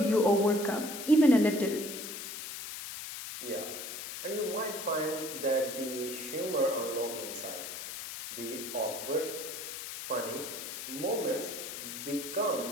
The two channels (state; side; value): noise; left; hiss, 8 dB below the sound